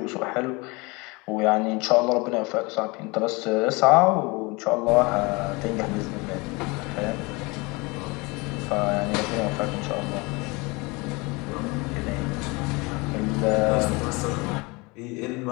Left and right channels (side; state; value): right; quieter; 26.0 dB